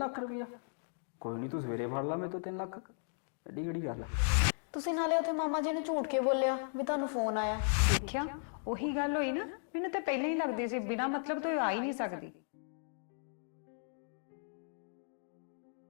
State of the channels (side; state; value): right; silent; digital silence